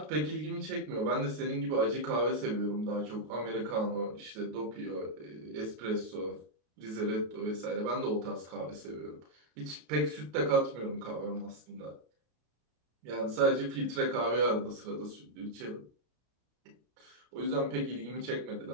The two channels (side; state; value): left; late; 33 ms